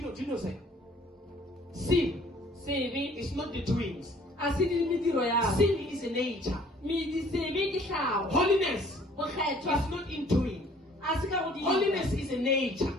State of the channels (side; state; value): both; normal; correlation 0.56